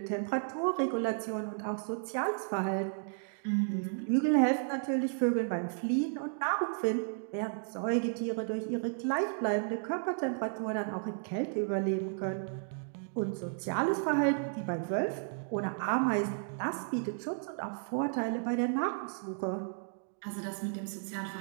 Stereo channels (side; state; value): left; silent; digital silence